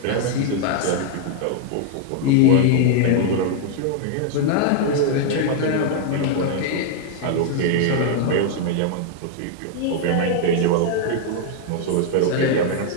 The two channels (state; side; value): different; both; correlation 0.00